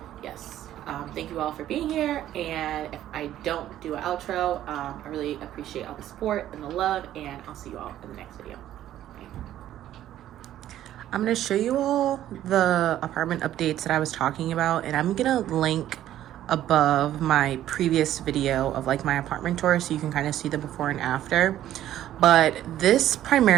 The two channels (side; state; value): left; quieter; 12.4 dB